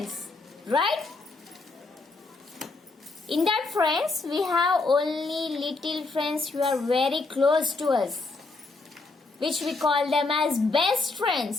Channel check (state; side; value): quieter; right; 3.6 dB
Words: right? In that friends, we have only little friends who are very close to us, which we call them as best